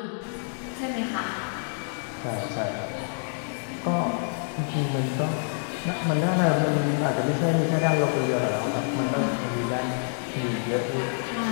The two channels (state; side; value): silent; right; 60 dB below the other